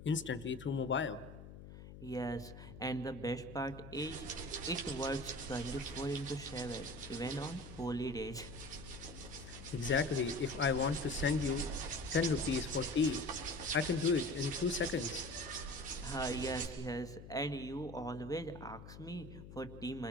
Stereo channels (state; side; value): noise; left; hum, 14 dB below the sound